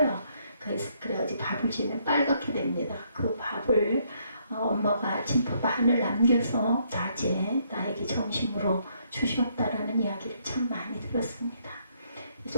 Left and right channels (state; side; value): inverted; both; correlation -0.71